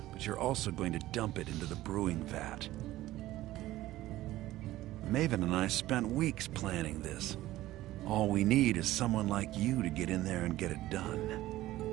but you're also going to dump it into the brewing vat. Maven and I spent weeks planning this. All we need is someone like you to get in there and get it done.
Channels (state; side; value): quieter; left; 15.9 dB